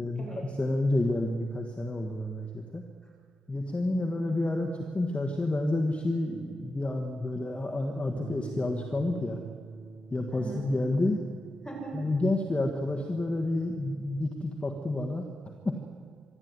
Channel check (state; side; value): normal; both; correlation 0.91